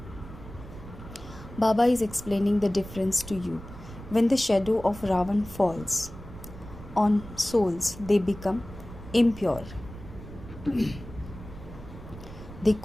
Baba is explaining the difference to you. When the shadow of Ravan falls on souls, they become impure. They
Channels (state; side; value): noise; right; rumble, 14 dB below the sound